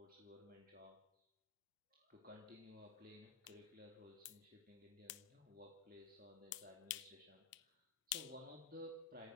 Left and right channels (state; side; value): quieter; right; 6.9 dB